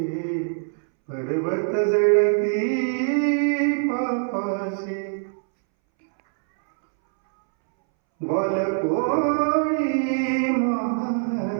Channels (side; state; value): left; silent; 63 dB below the other